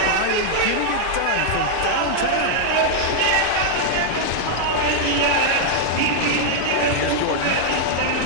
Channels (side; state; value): both; different; correlation -0.01